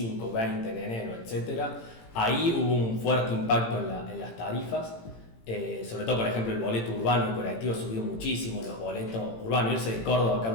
20, en enero, etc. Ahí hubo un fuerte impacto en las tarifas. Sobre todo, por ejemplo, el boleto urbano, el colectivo subió muchísimo, los boletos urbanos, irse de Córdoba a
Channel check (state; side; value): late; right; 18 ms